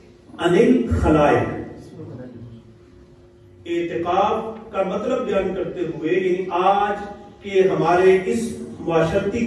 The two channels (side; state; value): both; identical; correlation 1.00